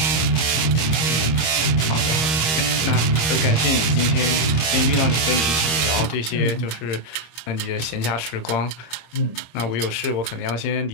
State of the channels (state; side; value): late; right; 25 ms